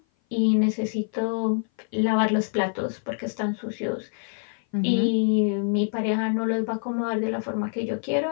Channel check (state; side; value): silent; right; 56 dB below the other